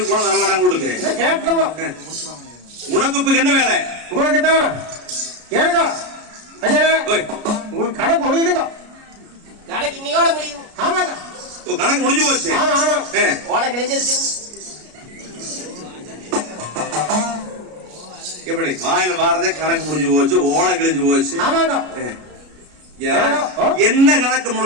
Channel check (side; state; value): left; late; 33 ms